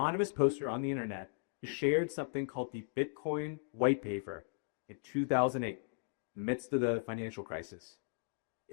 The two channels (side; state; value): right; silent; digital silence